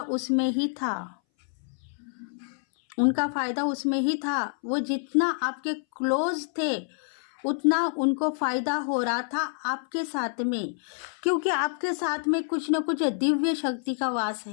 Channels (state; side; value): silent; right; 59 dB below the other